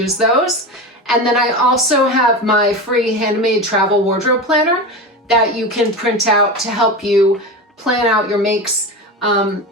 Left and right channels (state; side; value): normal; both; correlation 0.24